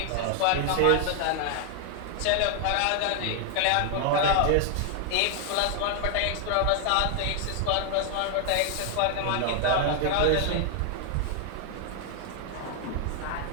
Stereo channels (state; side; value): different; both; correlation 0.00